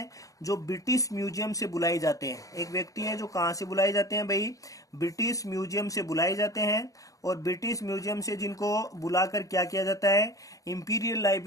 जो ब्रिटिश म्यूजियम से बुलाए जाते हैं। एक व्यक्ति हैं जो कहाँ से बुलाए जाते हैं भाई, ब्रिटिश म्यूजियम से बुलाए जाते हैं। और ब्रिटिश म्यूजियम से जिनको बुलाकर क्या किया जाता है, इंपीरियल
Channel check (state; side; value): late; right; 0.16 ms